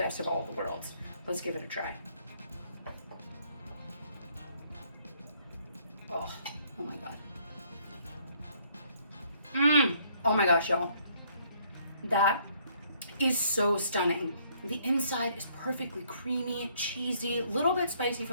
of all the worlds. Let's give it a try. Oh my God. Oh my gosh, y'all. That is so stunning. The inside is perfectly creamy, cheesy, a little bit spicy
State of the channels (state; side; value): inverted; both; correlation -0.66